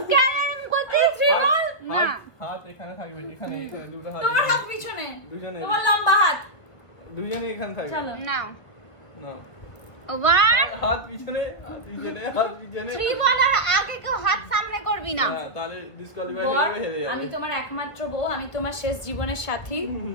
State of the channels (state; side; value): late; right; 1.3 ms